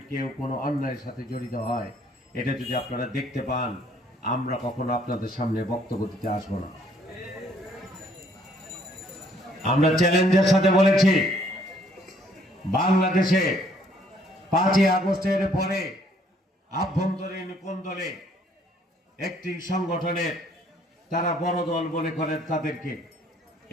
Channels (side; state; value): both; normal; correlation 0.64